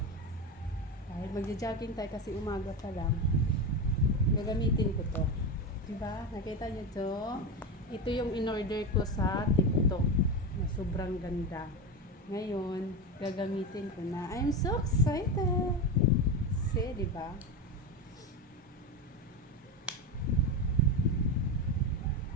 Dahil magja-jogging tayo kasi umaga pa lang, gagamitin ko to. Diba? Nakita nyo to? Ito yung in-order ko sa TikTok na sobrang ganda. Ngayon, gagamitin ko na. I'm so excited! See, diba?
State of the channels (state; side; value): normal; both; correlation 0.18